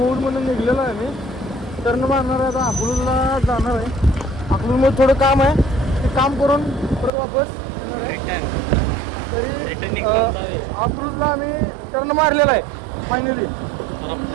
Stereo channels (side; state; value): left; drops out; at 7.1 s